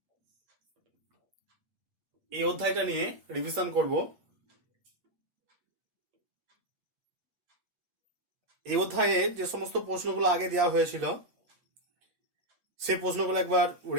এই অধ্যায়টা নিয়ে রিভিশন করব। এই অধ্যায়ে যে সমস্ত প্রশ্নগুলো আগে দেওয়া হয়েছিল সেই প্রশ্নগুলো একবার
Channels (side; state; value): left; late; 8.7 ms